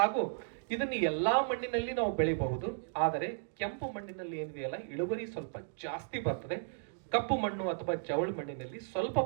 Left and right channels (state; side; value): silent; left; digital silence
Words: ಇದನ್ನು ಎಲ್ಲಾ ಮಣ್ಣಿನಲ್ಲಿ ನಾವು ಬೆಳಿಬಹುದು. ಆದರೆ ಕೆಂಪು ಮಣ್ಣಿನಲ್ಲಿ ಏನಿದೆಯಲ್ಲ ಇಳುವರಿ ಸ್ವಲ್ಪ ಜಾಸ್ತಿ ಬರ್ತದೆ. ಕಪ್ಪು ಮಣ್ಣು ಅಥವಾ ಜವಳು ಮಣ್ಣಿನಲ್ಲಿ ಸ್ವಲ್ಪ